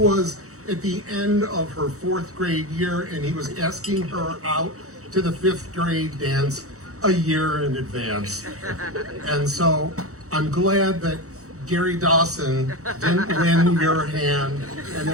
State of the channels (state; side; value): late; left; 0.65 ms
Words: at the end of her 4th grade year, and he was asking her out to the 5th grade dance a year in advance. And so I'm glad that Gary Dawson didn't win your hand, and